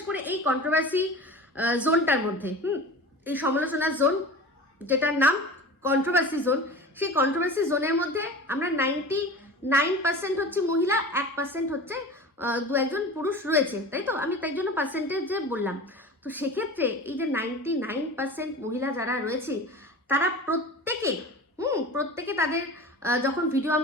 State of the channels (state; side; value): normal; both; correlation 0.35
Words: করে এই কন্ট্রোভার্সি জোনটার মধ্যে, এই সমালোচনার জোন যেটার নাম কন্ট্রোভার্সি জোন, সেই কন্ট্রোভার্সি জোনের মধ্যে আমরা 99% হচ্ছে মহিলা, 1% হচ্ছে দু একজন পুরুষ রয়েছে, তাই তো? আমি তাই জন্য পার্সেন্টেজে বললাম। তো সেক্ষেত্রে এই যে 99% মহিলা যারা রয়েছে, তারা প্রত্যেকে তাদের যখন ভিডিও